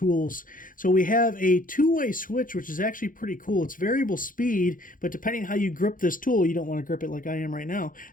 So we have a two-way switch, which is actually pretty cool. It's variable speed, but depending how you grip this tool, you don't want to grip it like I am right now.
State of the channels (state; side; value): late; right; 0.40 ms